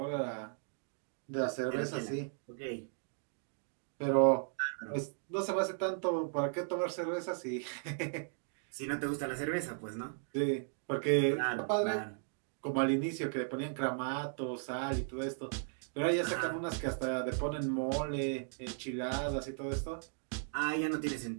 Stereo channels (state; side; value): silent; left; digital silence